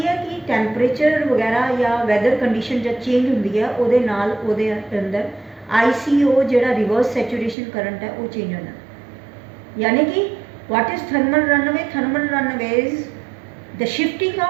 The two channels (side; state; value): left; drops out; at 7.6 s